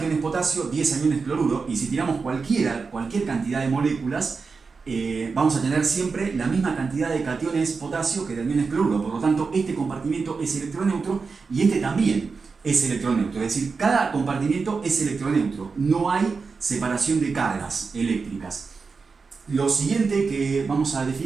potasio, 10 aniones cloruro, y si tiramos cualquier cantidad de moléculas, vamos a tener siempre la misma cantidad de cationes potasio que de aniones cloruro. Por lo tanto, este compartimiento es electroneutro y este también es electroneutro. Es decir, cada compartimiento es electroneutro. No hay separación de cargas eléctricas. Lo siguiente que vamos a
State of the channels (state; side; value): quieter; left; 4.8 dB